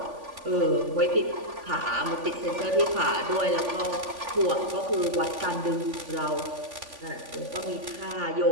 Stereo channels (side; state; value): left; late; 3.5 ms